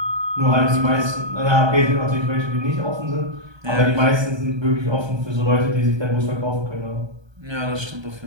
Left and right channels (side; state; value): left; late; 1.3 ms